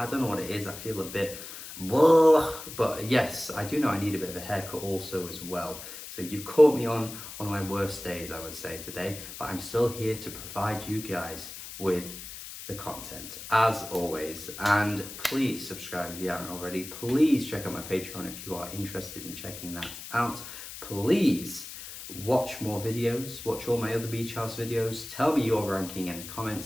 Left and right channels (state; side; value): noise; left; hiss, 11 dB below the sound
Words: don't know what it is. I feel a bit But yes, I do know I need a bit of a haircut also as well. So you've caught me on one of my worst days, I would say, today, but I'm still here to provide you guys with the content as always. And please subscribe if you haven't already. Please check out my Patreon if you are interested in checking that out. Please watch more videos, watch all my other beach house videos. Tell me your ranking in the